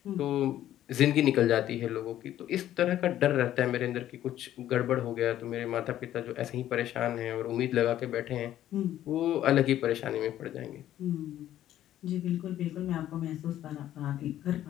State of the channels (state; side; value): quieter; right; 12.4 dB